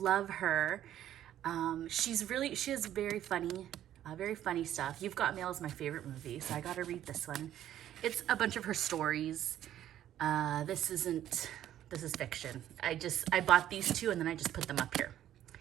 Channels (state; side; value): quieter; left; 11.8 dB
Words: her. She has very funny stuff. You've Got Mail is my favorite movie, so I got to read this one. It's a bunch of her stories. This is fiction. I bought these two and then I just put them up here.